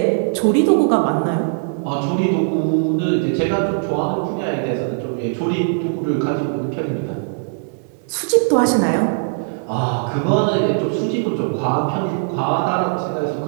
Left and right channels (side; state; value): left; silent; 61 dB below the other